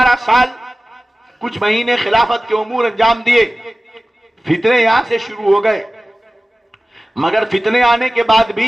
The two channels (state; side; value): normal; both; correlation 0.97